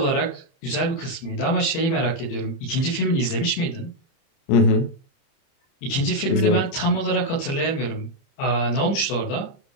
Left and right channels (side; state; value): right; late; 30 ms